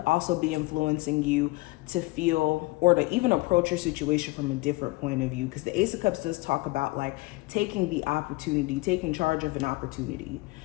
also be influencing you to feel, or to even approach your situation from a different point of view. Because the Ace of Cups does talk about like taking the opportunity, taking charge of an opportunity.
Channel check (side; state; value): right; quieter; 22.6 dB